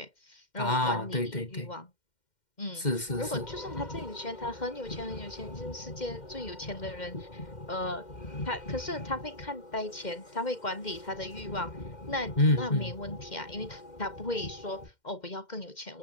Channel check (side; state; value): right; late; 2.1 ms